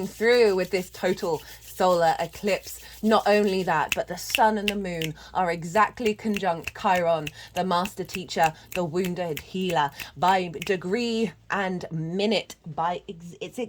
through with this total solar eclipse. Not only that, but the sun and the moon are exactly conjunct Chiron, the master teacher, the wounded healer, by degree and minute. It's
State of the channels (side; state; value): both; identical; correlation 1.00